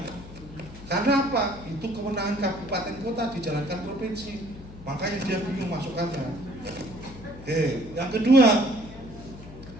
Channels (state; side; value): noise; left; hum, 16 dB below the sound